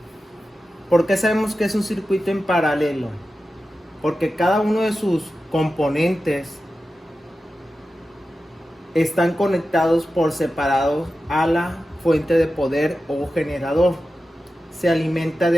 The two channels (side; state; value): both; normal; correlation 0.93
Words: ¿Por qué sabemos que es un circuito en paralelo? Porque cada uno de sus componentes están conectados por separado a la fuente de poder o generador. Se alimenta